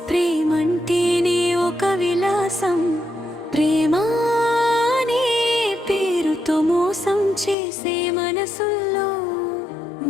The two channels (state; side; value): drops out; right; at 7.6 s